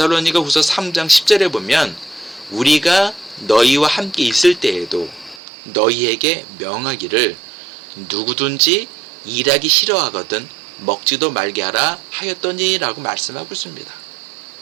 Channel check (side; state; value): left; drops out; at 5.4 s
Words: 후서 3장 10절에 보면 우리가 너희와 함께 있을 때에도 너희에게 명하기를 누구든지 일하기 싫어하거든 먹지도 말게 하라 하였더니 라고 말씀하고 있습니다.